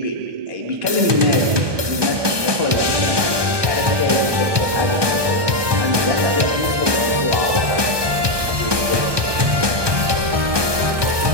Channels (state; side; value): late; left; 1.2 ms